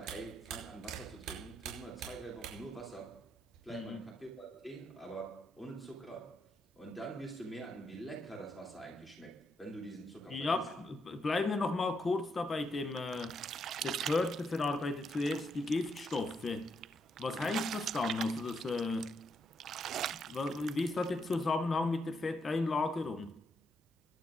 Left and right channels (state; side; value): normal; both; correlation 0.79